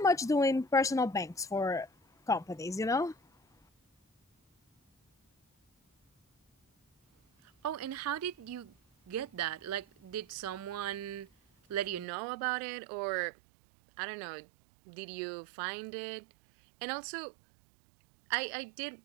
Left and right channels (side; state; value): left; drops out; at 12.1 s